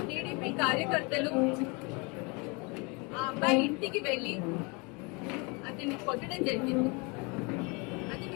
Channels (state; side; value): quieter; right; 29.8 dB